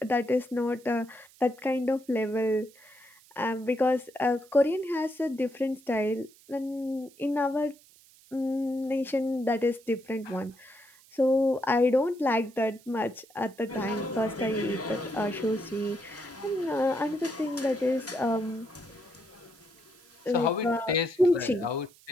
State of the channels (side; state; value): right; noise; hiss, 26 dB below the sound